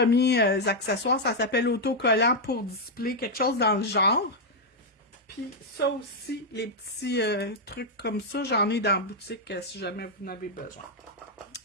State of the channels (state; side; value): normal; both; correlation -0.01